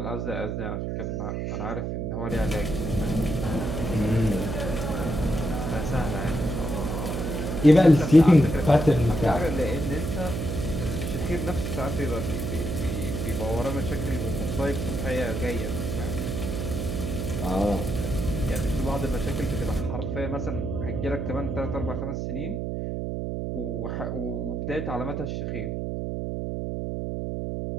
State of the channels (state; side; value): noise; right; hum, 2 dB below the sound